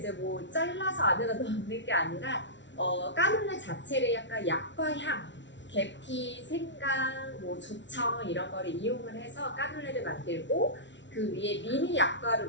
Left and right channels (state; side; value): late; right; 0.53 ms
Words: 뭐 잘라서 안에다 넣는 게 아니라 까눌레 자체를 약간 약과 향, 계피, 생강, 뭐 조청 이런 거를 이용을 해서 까눌레를 만들고 그 위에 미니